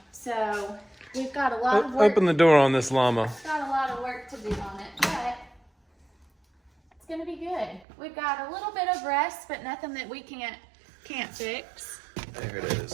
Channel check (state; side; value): drops out; left; at 7.9 s